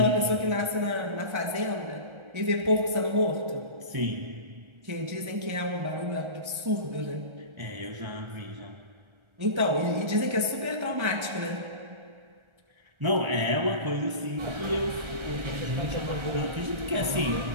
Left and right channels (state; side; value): late; left; 1.3 ms